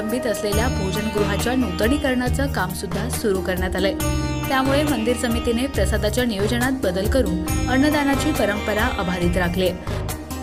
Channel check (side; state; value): both; identical; correlation 1.00